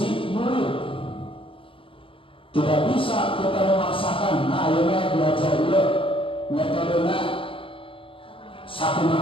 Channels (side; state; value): right; late; 0.26 ms